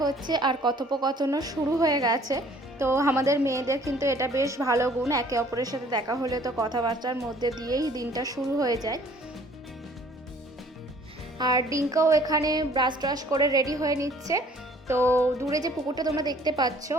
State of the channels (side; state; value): both; normal; correlation 0.56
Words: হচ্ছে আর কথোপকথনও শুরু হয়ে গেছে। তো আমাদের মেয়েদের কিন্তু এটা বেশ ভালো গুণ, একে অপরের সাথে দেখা হলে তো কথাবার্তার মধ্যে দিয়েই দিনটা শুরু হয়ে যায়। আর ডিঙ্কাও এখানে ব্রাশ ট্রাশ করে রেডি হয়ে নিচ্ছে। তো দূরে যে পুকুরটা তোমরা দেখতে পাচ্ছ